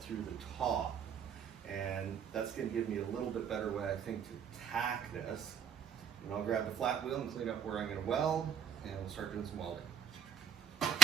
through the top, and that's going to give me a little bit better way, I think, to tack this. And I'll grab the flat wheel and clean up where I'm going to weld, and we'll start doing some welding.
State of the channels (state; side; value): quieter; left; 8.3 dB